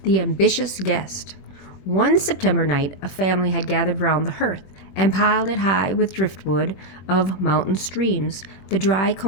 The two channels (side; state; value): right; late; 21 ms